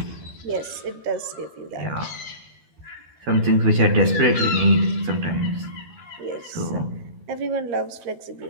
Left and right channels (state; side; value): late; left; 13 ms